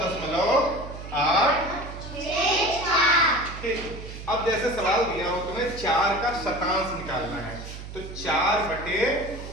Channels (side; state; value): right; noise; hum, 11 dB below the sound